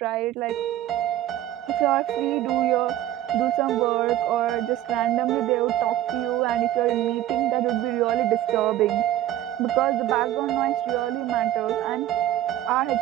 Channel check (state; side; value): quieter; left; 13.0 dB